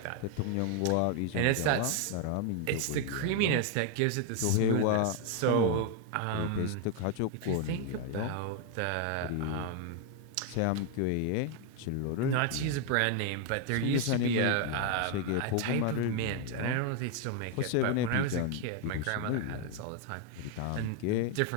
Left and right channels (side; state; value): both; different; correlation 0.01